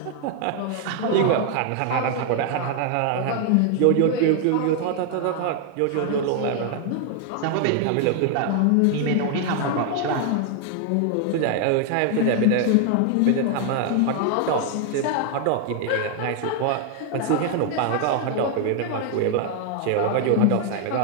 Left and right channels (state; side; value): different; both; correlation 0.00